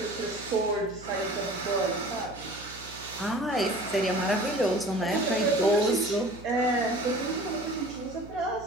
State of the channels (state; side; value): noise; right; hum, 17 dB below the sound